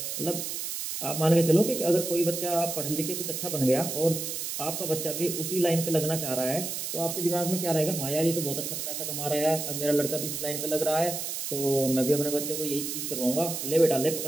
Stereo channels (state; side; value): noise; right; hiss, 4 dB below the sound